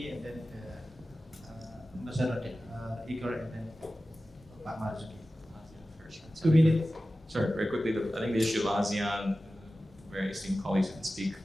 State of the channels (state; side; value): normal; both; correlation 0.95